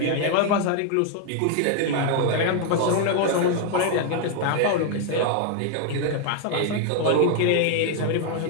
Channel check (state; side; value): different; both; correlation 0.00